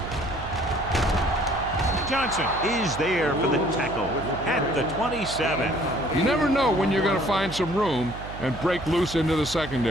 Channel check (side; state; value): right; noise; hum, 12 dB below the sound